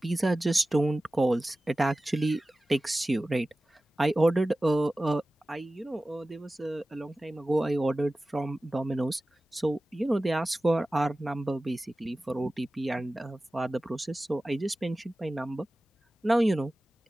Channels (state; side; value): normal; both; correlation 0.96